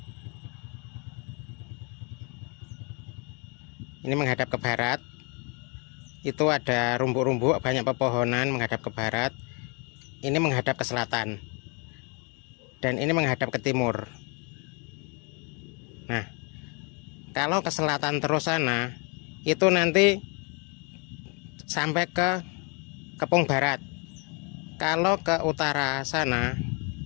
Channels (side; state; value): right; quieter; 33.5 dB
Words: Ini menghadap ke barat. Itu ada rumput-rumput, banyak pepohonan menghadap ke barat. Ini menghadap ke selatan. Dan ini menghadap ke timur. Nah, kalau ke selatan terus sana, itu nanti sampai ke Kepung Barat. Kalau ke utara sana,